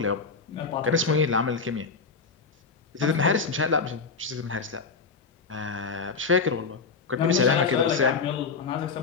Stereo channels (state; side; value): quieter; right; 4.8 dB